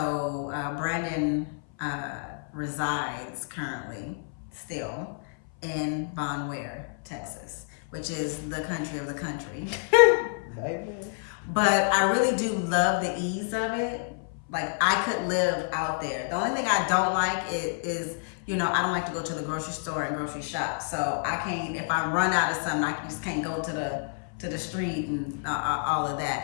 Brandon resides currently still in Von Ware, Texas, which is the country of the country. But I really do love the ease of it. Like, I could live out there. The only thing I don't like is I don't like to go to the grocery store and grocery shop. So I can't, if I run out of something, I just can't go to the street and all of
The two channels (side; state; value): right; silent; 57 dB below the other